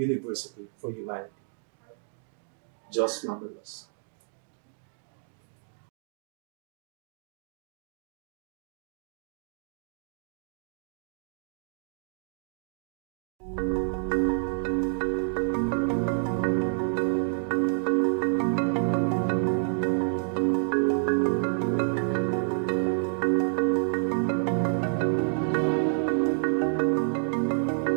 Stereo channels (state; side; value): silent; left; digital silence